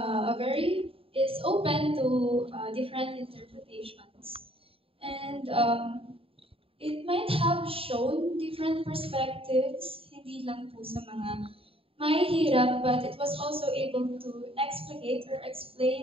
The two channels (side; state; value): left; late; 0.27 ms